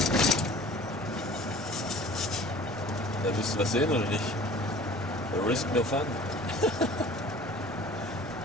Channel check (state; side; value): normal; both; correlation 0.46